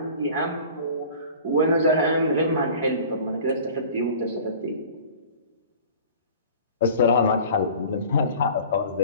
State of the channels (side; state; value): both; inverted; correlation -0.43